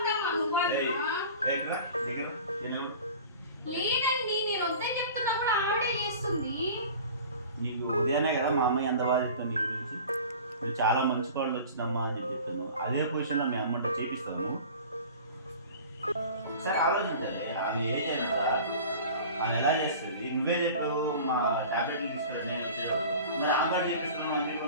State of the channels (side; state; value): both; inverted; correlation -0.41